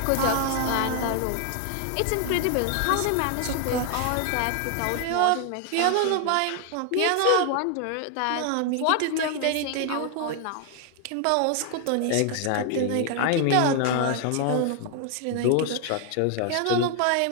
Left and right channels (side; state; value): both; different; correlation 0.00